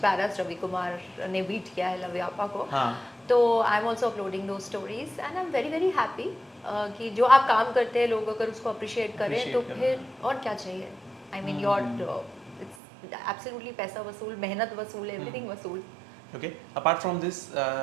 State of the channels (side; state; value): left; drops out; at 12.8 s